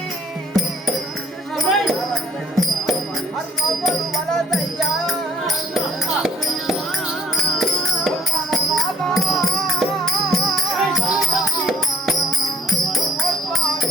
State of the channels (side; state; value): both; normal; correlation 0.60